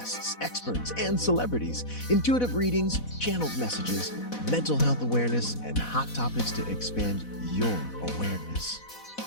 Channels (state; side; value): late; right; 4.1 ms